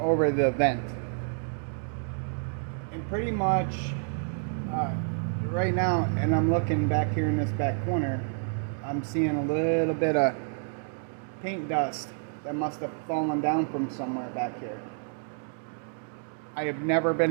over the vent. And pretty much right now, and I'm looking back here in this back corner, I'm seeing a little bit of paint dust that must have fallen down from somewhere back here. I have never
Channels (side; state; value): left; silent; 59 dB below the other